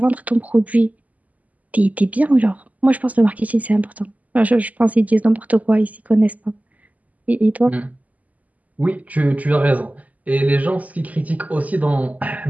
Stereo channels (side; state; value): left; late; 0.075 ms